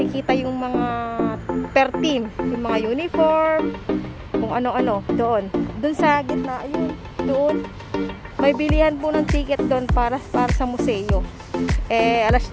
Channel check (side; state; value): both; identical; correlation 1.00